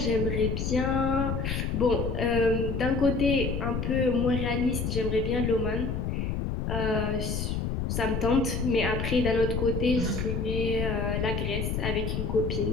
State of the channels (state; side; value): noise; left; rumble, 1 dB below the sound